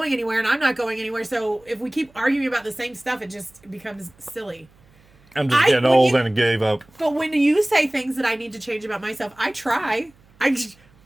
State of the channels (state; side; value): noise; right; hum, 30 dB below the sound